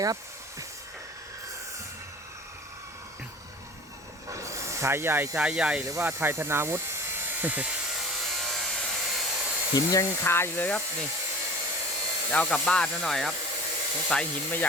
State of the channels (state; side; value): normal; both; correlation 0.41